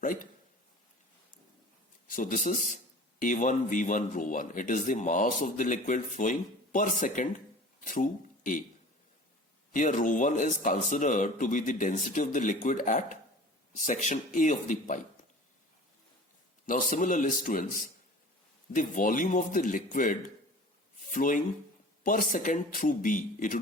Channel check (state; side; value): normal; both; correlation 0.42